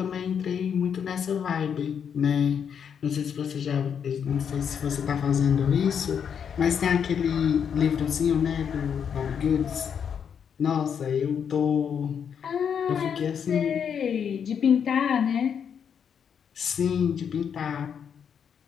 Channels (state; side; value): quieter; right; 7.6 dB